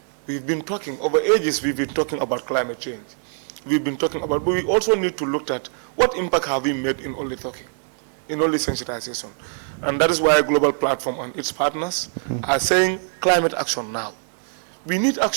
We've been talking, over ages we've been talking about climate change. We've been talking about, but we also need to look at what impact have we made in only talking, in only sensitization. And that is why a global platform and its partners are saying climate action now. We need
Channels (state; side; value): silent; left; 63 dB below the other